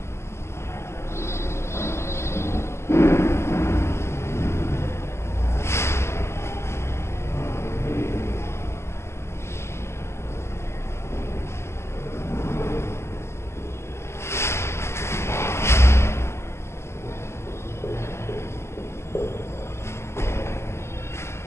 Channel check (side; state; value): right; late; 0.13 ms